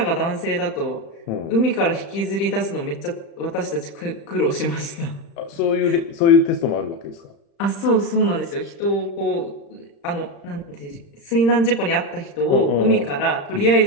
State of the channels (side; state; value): right; late; 35 ms